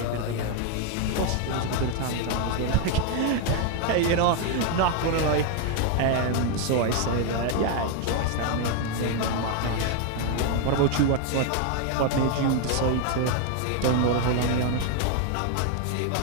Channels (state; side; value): different; both; correlation 0.01